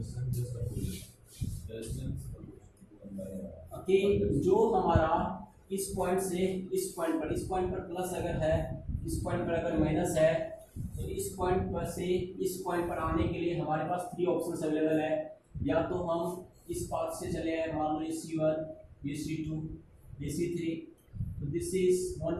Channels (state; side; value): identical; both; correlation 1.00